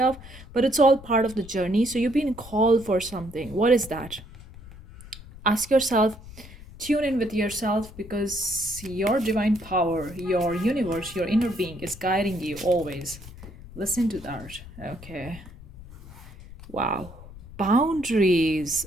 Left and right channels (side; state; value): left; noise; rumble, 17 dB below the sound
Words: but it's all part of the journey. So you've been called for something. What is that? Ask yourself, tune in with yourself, because your divine power, your universe, your inner being is guiding you always. Listen to that. Okay. Wow. Boundaries.